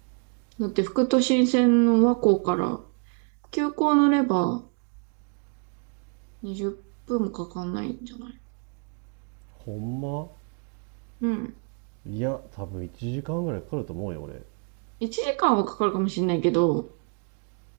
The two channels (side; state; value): left; quieter; 36.9 dB